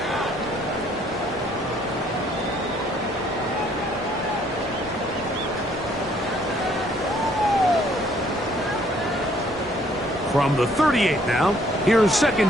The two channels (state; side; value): normal; both; correlation 0.63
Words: From the 38 now, here's